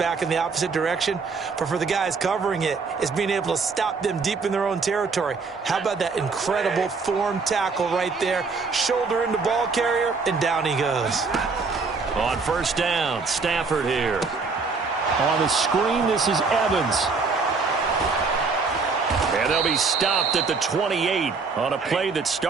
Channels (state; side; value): quieter; left; 4.6 dB